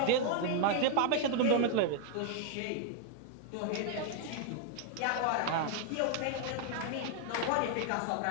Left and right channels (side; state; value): both; different; correlation 0.00